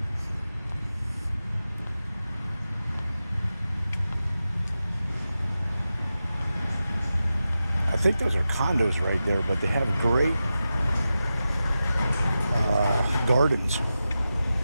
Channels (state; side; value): inverted; both; correlation -0.92